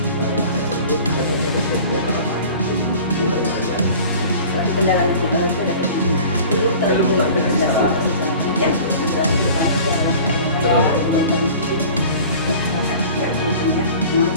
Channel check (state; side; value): inverted; both; correlation -0.42